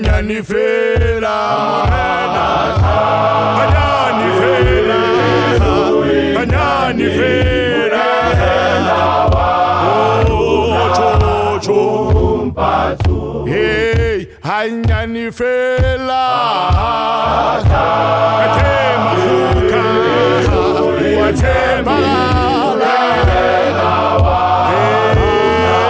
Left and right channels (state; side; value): identical; both; correlation 1.00